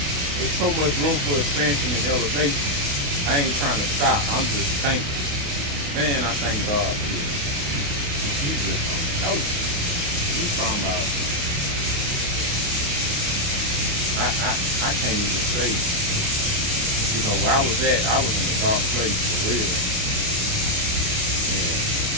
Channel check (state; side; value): late; left; 28 ms